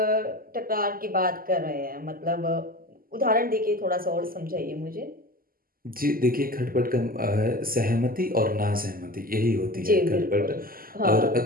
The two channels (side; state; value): left; late; 0.42 ms